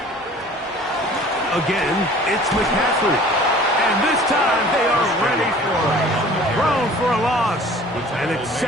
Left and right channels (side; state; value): both; normal; correlation 0.48